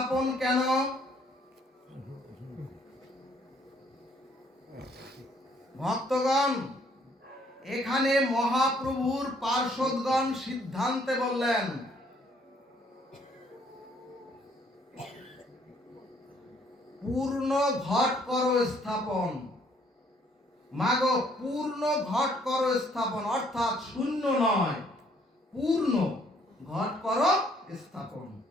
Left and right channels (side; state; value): both; normal; correlation 0.65